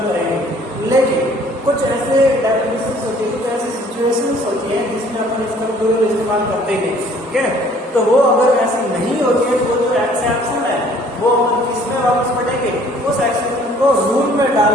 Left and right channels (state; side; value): normal; both; correlation 0.56